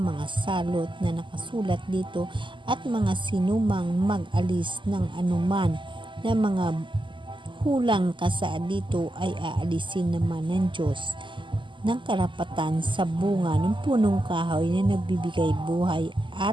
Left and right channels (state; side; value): late; left; 0.24 ms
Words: mga salot na nakasulat dito at mga sinumang mag-alis ng anuman na mga hulang kasaad dito ay aalisin naman ng Diyos ng karapatan sa bunga ng punong kahoy na nagbibigay buhay